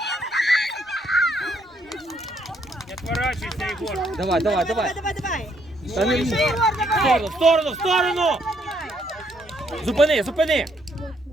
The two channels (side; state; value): both; normal; correlation 0.71